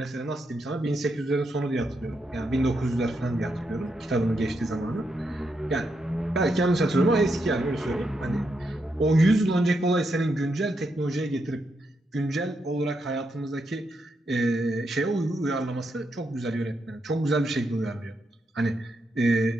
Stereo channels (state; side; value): normal; both; correlation 0.82